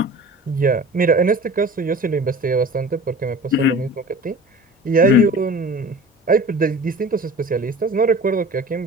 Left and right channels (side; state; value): both; normal; correlation 0.41